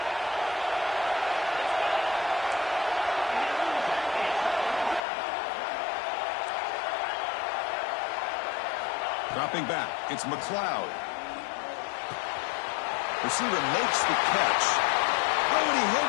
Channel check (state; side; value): drops out; right; at 5.0 s